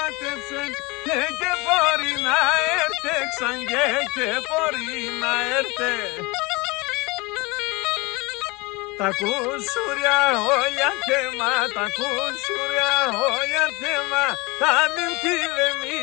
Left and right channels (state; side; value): quieter; right; 25.1 dB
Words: και μπορεί να έρθε ξανγε και μπορεί να έρθε. Τα κουσουριά όλια θέμα, τα κουσουριά όλια θέμα, τα νύμφη δε